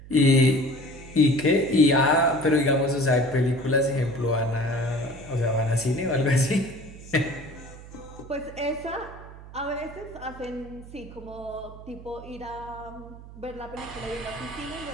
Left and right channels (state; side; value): noise; right; hum, 16 dB below the sound